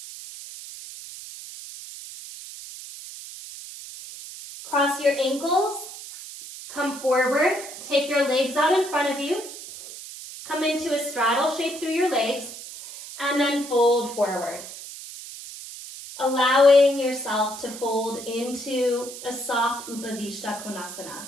Cross your ankles, come forward, take your legs out in front of you, come into a straddle shape through your legs, and then fold forward. Allowing yourself to fold into a soft Upavishta Konasana.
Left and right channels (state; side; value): noise; right; hiss, 12 dB below the sound